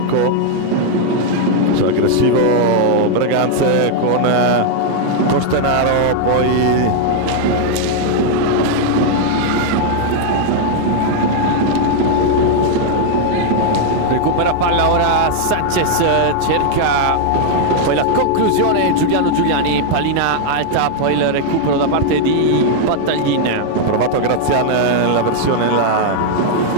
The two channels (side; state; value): both; different; correlation 0.00